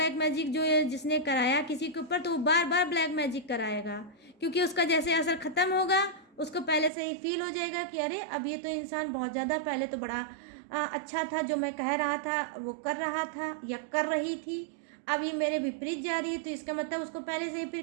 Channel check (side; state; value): left; drops out; at 6.9 s